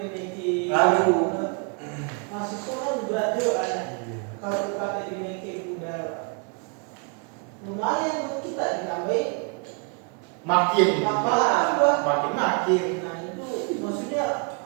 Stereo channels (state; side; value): quieter; left; 35.2 dB